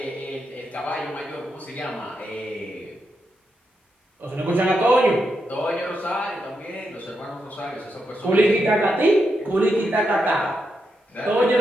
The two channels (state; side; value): normal; both; correlation 0.84